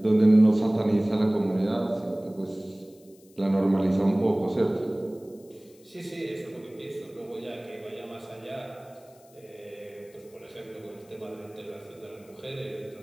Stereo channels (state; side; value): noise; left; hiss, 28 dB below the sound